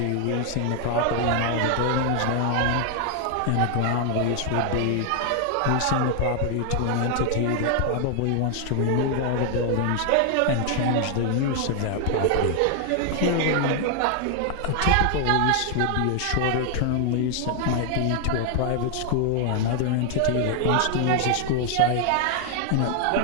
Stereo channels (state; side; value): different; both; correlation 0.00